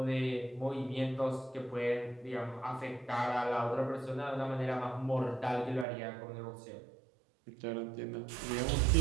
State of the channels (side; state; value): left; drops out; at 5.9 s